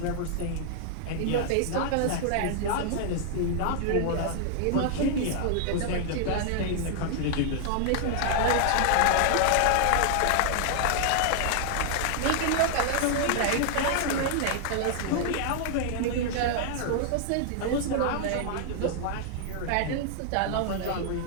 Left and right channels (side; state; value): both; different; correlation -0.01